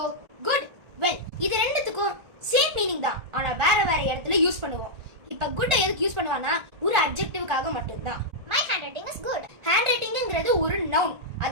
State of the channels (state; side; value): late; left; 1.4 ms